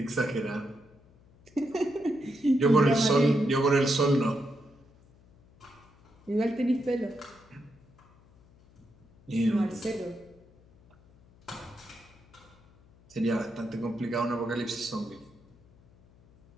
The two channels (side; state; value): left; noise; hum, 28 dB below the sound